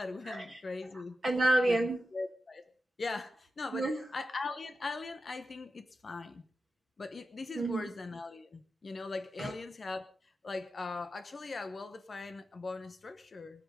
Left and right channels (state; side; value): normal; both; correlation 0.90